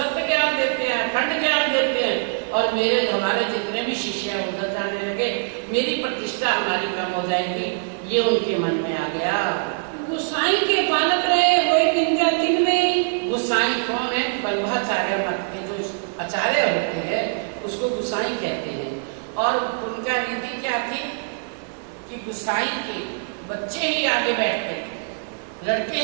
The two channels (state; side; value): silent; left; digital silence